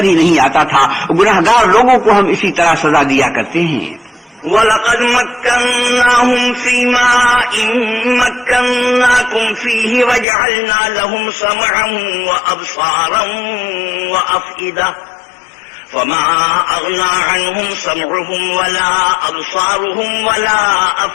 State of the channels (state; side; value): drops out; right; at 10.2 s